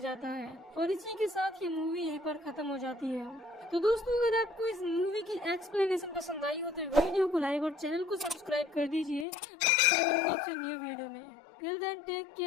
जाता है और इसी के साथ ये मूवी यहीं पर खत्म हो जाती है। तो दोस्तों, अगर आपको इस मूवी की एक्सप्लेनेशन पसंद आई हो तो वीडियो को लाइक और चैनल को सब्सक्राइब कर दीजिए न्यू वीडियो में। Till then take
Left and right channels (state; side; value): drops out; right; at 9.2 s